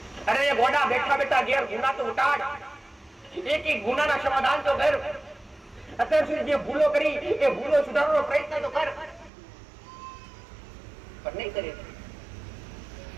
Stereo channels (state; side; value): drops out; left; at 9.3 s